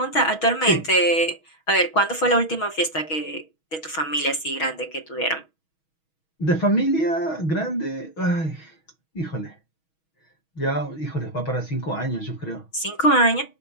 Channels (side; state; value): right; late; 6.3 ms